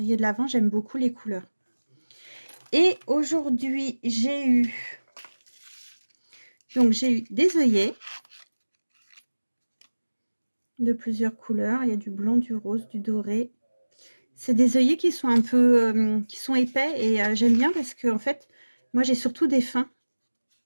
de l'Avent. J'aime beaucoup les couleurs. Et aujourd'hui, j'ai eu des œillets de plusieurs couleurs. Il y a du blanc, du rose, du doré. C'est des œillets qui sont un peu qui sont épais et j'aime bien parce que en fait, moi j'ai surtout des fins.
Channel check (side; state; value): both; inverted; correlation -1.00